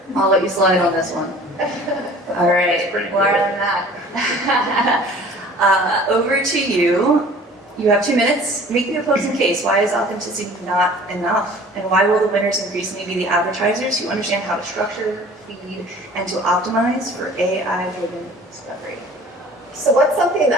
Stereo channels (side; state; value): both; normal; correlation 0.47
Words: I'll let you slide on this one. All right, more than that. Over to you. You have 2 minutes. Make the opposing case. Why is authenticity not enough? And why will the winners increasingly be the advertisers who understand how to structure, feed, and to optimize for AI-driven discovery? So what's something